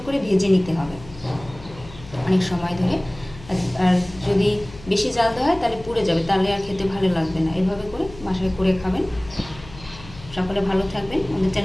করে ভেজে নিতে হবে অনেক সময় ধরে। আর যদি বেশি জাল দেওয়া হয় তাহলে পুড়ে যাবে, তাহলে আর খেতে ভালো লাগবে না। এভাবে করে বাসায় করে খাবেন। সকলে ভালো থাকবেন। আমাদের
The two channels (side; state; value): left; noise; hum, 18 dB below the sound